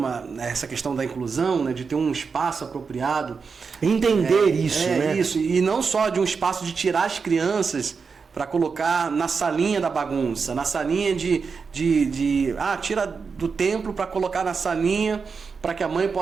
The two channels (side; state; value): left; quieter; 5.3 dB